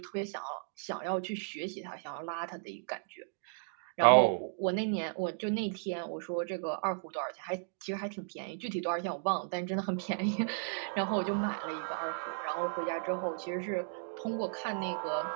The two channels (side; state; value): left; silent; digital silence